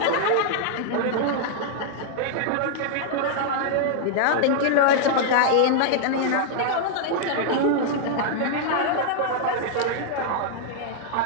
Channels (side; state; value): both; different; correlation -0.01